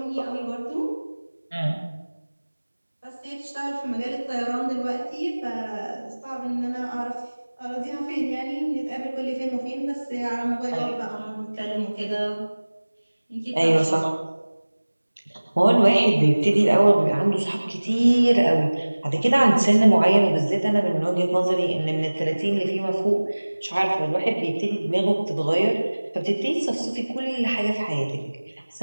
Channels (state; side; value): inverted; both; correlation -1.00